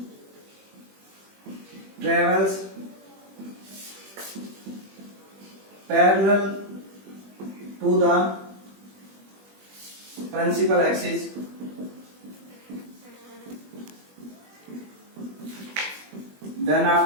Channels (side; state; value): left; late; 21 ms